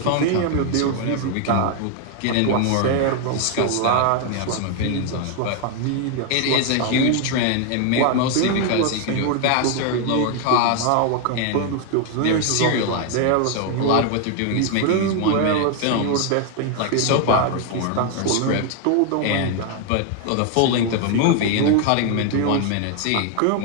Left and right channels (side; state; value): both; different; correlation 0.00